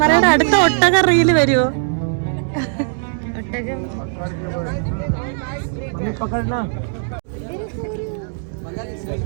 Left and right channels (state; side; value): silent; left; digital silence